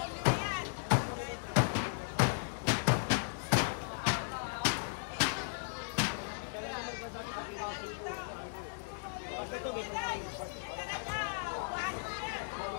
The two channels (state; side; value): silent; right; digital silence